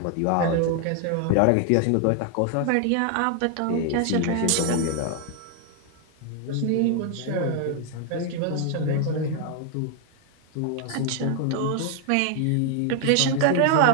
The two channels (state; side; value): different; both; correlation 0.00